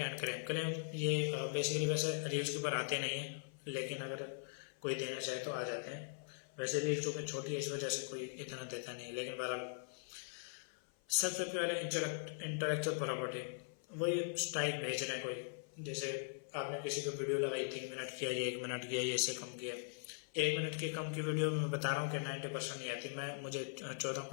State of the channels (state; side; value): silent; right; 51 dB below the other